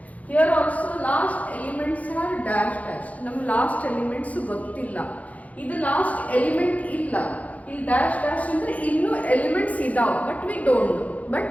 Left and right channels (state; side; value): late; right; 0.070 ms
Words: Here also last elements are dash dash. Nam last elements gottilla. Idu last element illa. Il dash dash andre innu elements idav but we don't